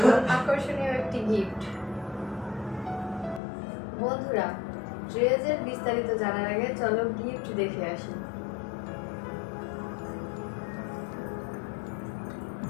আকর্ষণীয় একটি গিফট। বন্ধুরা, ড্রেসের বিস্তারিত জানার আগে চলো গিফট দেখে আসি।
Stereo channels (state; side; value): drops out; right; at 3.4 s